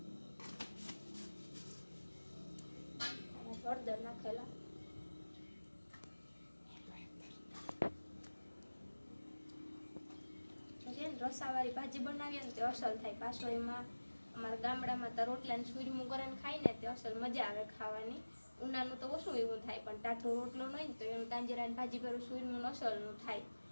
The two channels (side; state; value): both; inverted; correlation -1.00